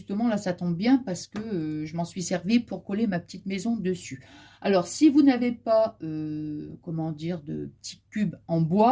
là, ça tombe bien parce que je m'en suis servi pour coller ma petite maison dessus. Alors, si vous n'avez pas, comment dire, de petits cubes en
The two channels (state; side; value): identical; both; correlation 1.00